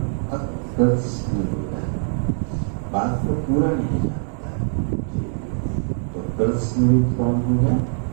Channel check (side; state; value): left; silent; digital silence